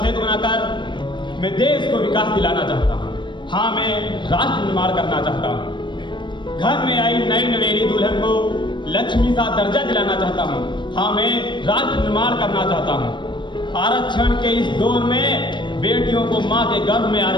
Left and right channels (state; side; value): late; right; 0.22 ms